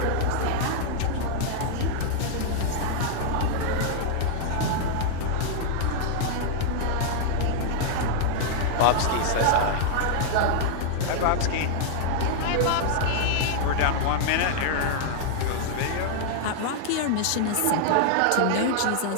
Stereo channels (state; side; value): different; both; correlation -0.01